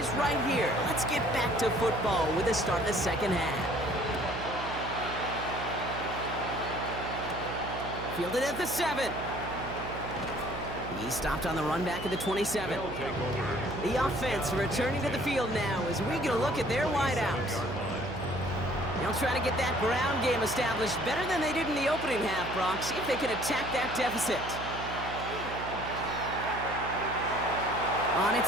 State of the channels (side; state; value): right; noise; hum, 9 dB below the sound